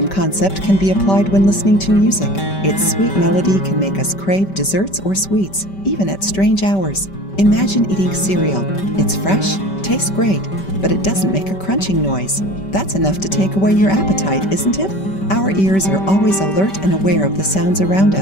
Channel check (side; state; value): right; late; 5.2 ms